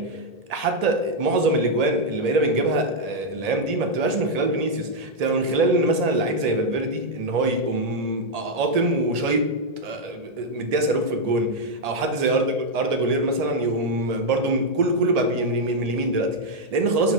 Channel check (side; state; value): left; late; 1.8 ms